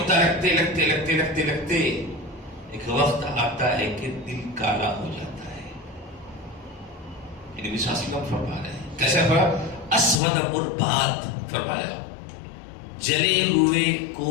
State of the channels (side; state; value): right; drops out; at 10.2 s